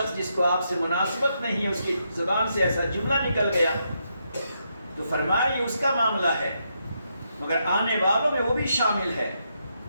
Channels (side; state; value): both; inverted; correlation -0.80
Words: جس کو آپ سے مناسبت نہیں ہے، اس کی زبان سے ایسا جملہ نکل گیا، تو فرمایا یہ اس کا معاملہ ہے، مگر آنے والوں میں وہ بھی شامل ہے۔